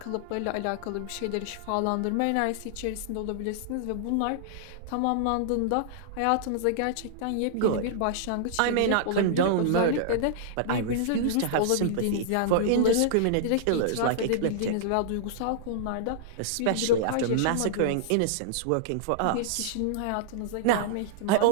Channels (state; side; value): different; both; correlation -0.01